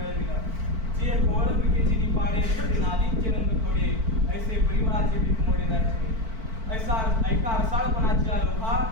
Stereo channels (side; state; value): left; late; 4.5 ms